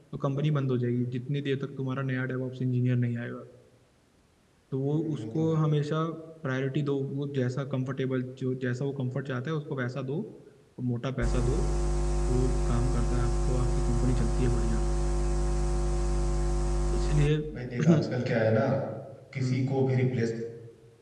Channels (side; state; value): both; identical; correlation 1.00